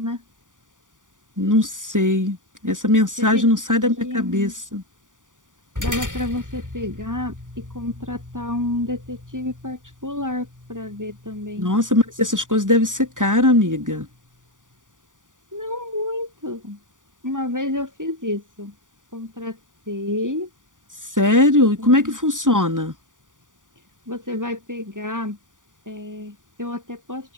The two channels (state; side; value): late; left; 0.88 ms